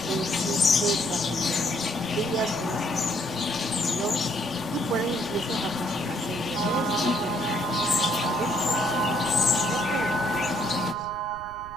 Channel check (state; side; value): noise; right; rumble, 17 dB below the sound